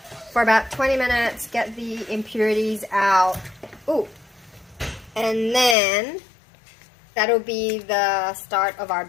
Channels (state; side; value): drops out; right; at 5.8 s